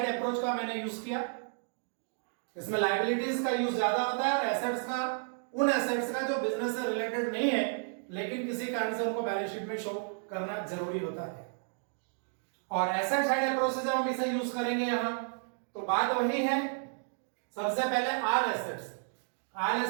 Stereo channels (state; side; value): silent; left; 56 dB below the other